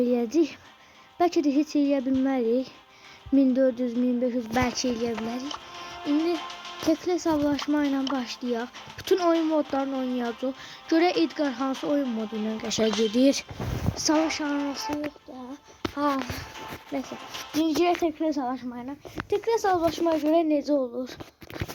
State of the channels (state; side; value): identical; both; correlation 1.00